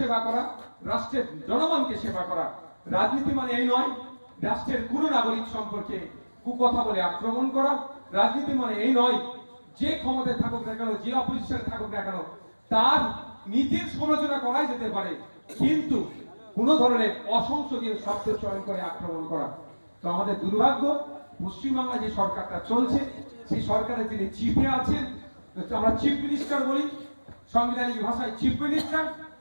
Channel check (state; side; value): inverted; both; correlation -1.00